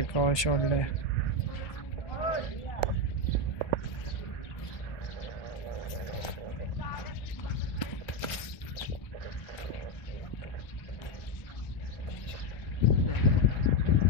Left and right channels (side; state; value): right; late; 1.1 ms